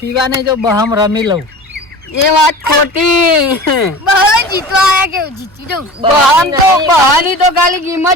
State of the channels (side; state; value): both; normal; correlation 0.36